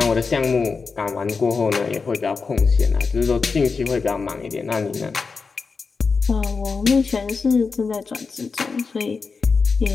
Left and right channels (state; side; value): quieter; right; 4.8 dB